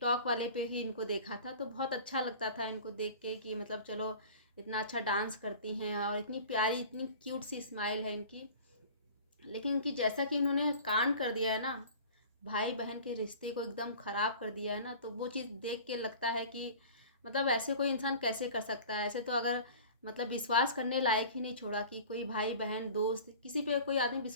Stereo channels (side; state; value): both; inverted; correlation -0.42